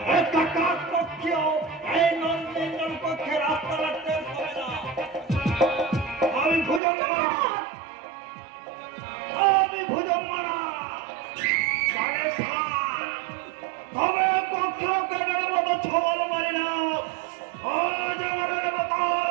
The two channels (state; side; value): drops out; left; at 6.8 s